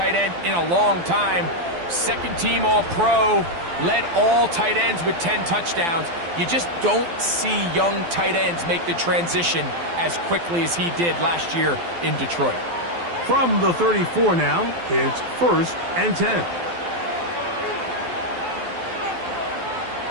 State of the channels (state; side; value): late; left; 12 ms